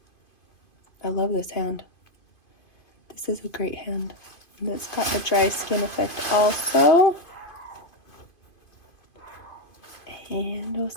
I love this hand. This is a great hand. And it's got the dry skin effect also. And we'll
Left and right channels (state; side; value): late; right; 2.5 ms